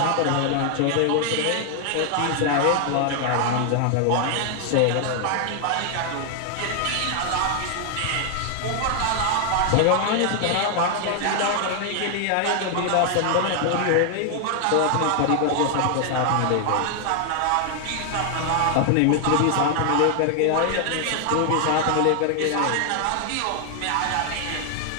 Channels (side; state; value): both; different; correlation 0.00